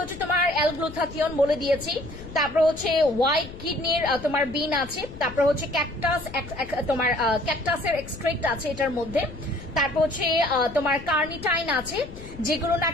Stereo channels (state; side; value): noise; left; rumble, 15 dB below the sound